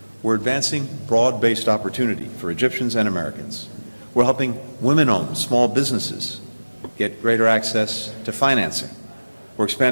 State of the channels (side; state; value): both; inverted; correlation -1.00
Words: We're advancing broad-based opportunity for Egyptians and Americans. We're helping women-owned small businesses get greater access to financing. We're